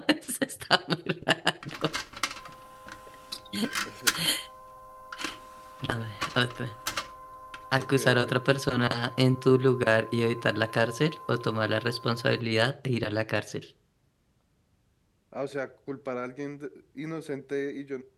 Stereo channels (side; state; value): both; identical; correlation 1.00